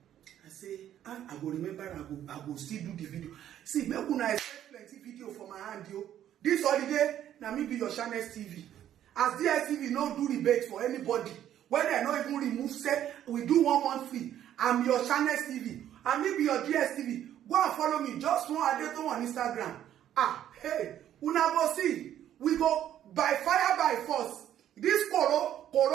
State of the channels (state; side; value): quieter; left; 11.1 dB